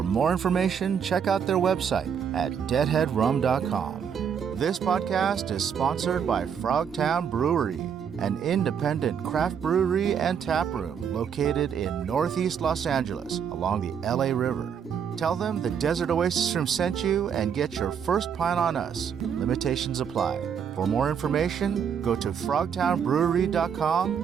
more information, check out their website at deadheadrum.com. This podcast is sponsored by Frogtown Brewery, an independent craft brewery and tap room located in Northeast Los Angeles along the LA River. Tell them the Desert Oasis Room sent you and get your first pint on us. Limitations apply. For more information, go to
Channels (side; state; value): left; quieter; 7.5 dB